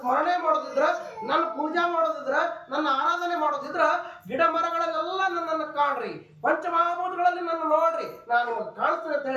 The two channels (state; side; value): identical; both; correlation 1.00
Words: ಮಾಡೋದಿದ್ರ, ನನ್ನ ಪೂಜಾ ಮಾಡೋದಿದ್ರ, ನನ್ನ ಆರಾಧನೆ ಮಾಡೋದಿದ್ರ, ಗಿಡ ಮರಗಳಲ್ಲೆಲ್ಲ ನನ್ನನ್ನು ಕಾಣ್ರಿ, ಪಂಚಮಹಾಭೂತಗಳಲ್ಲಿ ನನ್ನ ನೋಡ್ರಿ, ನಾನು ನಿಮಗೆ ಕಾಣಿಸ್ತೇನೆ ಅಂತ